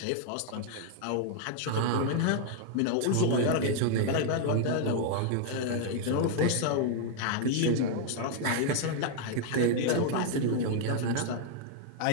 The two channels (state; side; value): different; both; correlation 0.00